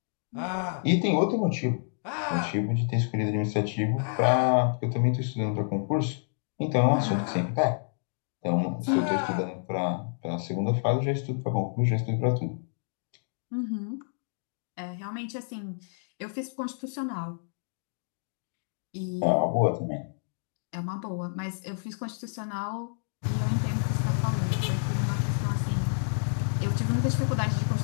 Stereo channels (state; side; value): silent; right; digital silence